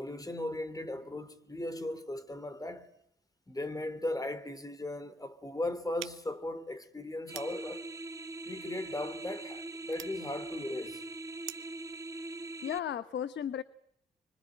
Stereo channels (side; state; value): both; normal; correlation 0.67